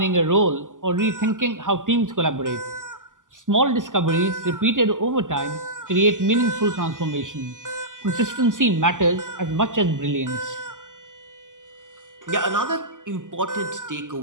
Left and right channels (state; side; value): late; left; 0.88 ms